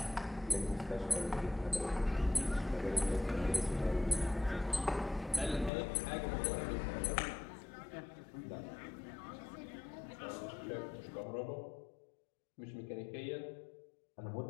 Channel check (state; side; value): drops out; right; at 5.7 s